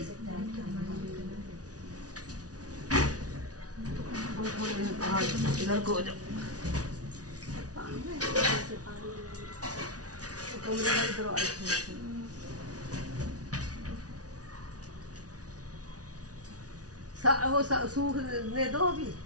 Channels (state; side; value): late; left; 0.68 ms